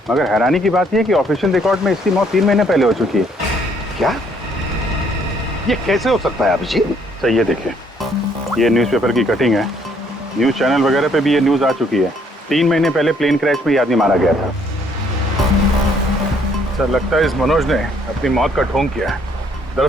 मगर हैरानी की बात यह है कि ऑफिशियल रिकॉर्ड में इसकी मौत 3 महीने पहले हो चुकी है। क्या? ये कैसे हो सकता है अभिजीत? सर ये देखिए, ये न्यूज़पेपर की कटिंग है। न्यूज़ चैनल वगैरह पे भी ये न्यूज़ आ चुकी है। 3 महीने पहले प्लेन क्रैश में ये आदमी मारा गया था। सर लगता है इस मनोज ने अपनी मौत का ढोंग किया है।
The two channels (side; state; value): both; normal; correlation 0.66